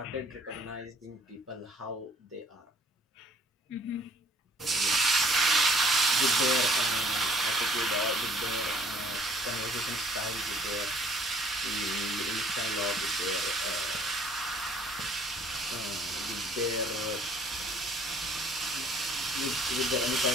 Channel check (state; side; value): normal; both; correlation 0.57